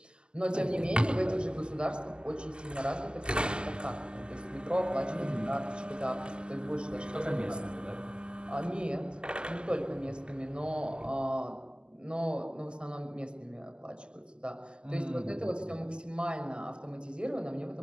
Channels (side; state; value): left; late; 0.049 ms